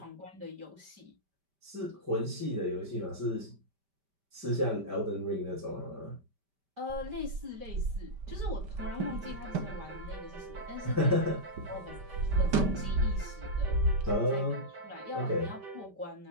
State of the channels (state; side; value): late; left; 5.1 ms